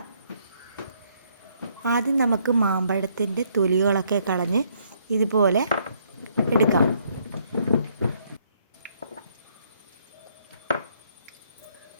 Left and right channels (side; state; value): both; inverted; correlation -0.69